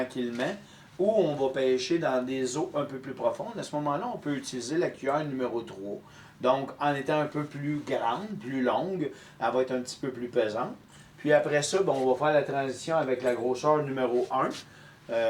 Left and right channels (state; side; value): identical; both; correlation 1.00